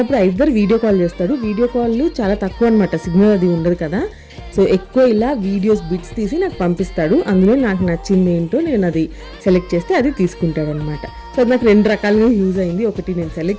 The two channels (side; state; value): both; identical; correlation 1.00